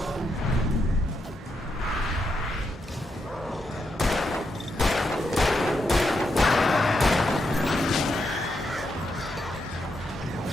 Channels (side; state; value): both; normal; correlation 0.82